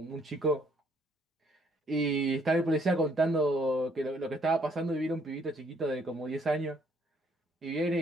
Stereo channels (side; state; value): both; normal; correlation 0.66